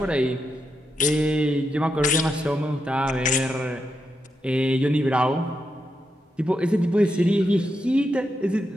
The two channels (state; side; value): normal; both; correlation 0.84